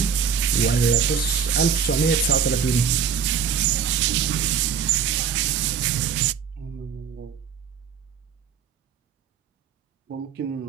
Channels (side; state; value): left; quieter; 7.0 dB